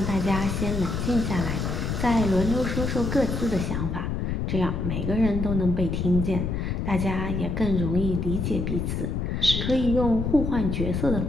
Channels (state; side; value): noise; left; rumble, 1 dB below the sound